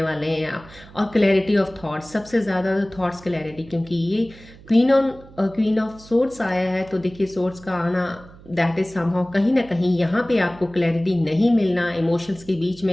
वाले हैं आप। और क्लैरिटी ऑफ थॉट्स, सबसे ज़्यादा थॉट्स क्लैरिटी, क्योंकि ये क्वीन ऑफ सोर्ट्स आया है। तो देखिए सोर्ट्स का आना, दैट इज समहाउ कहीं ना कहीं यहाँ पे आपको क्लैरिटी नहीं मिलना, इमोशंस के बीच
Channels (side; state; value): right; noise; hum, 21 dB below the sound